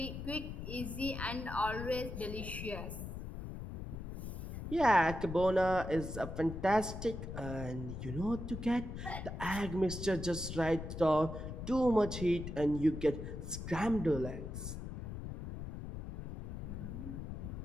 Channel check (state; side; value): noise; left; rumble, 7 dB below the sound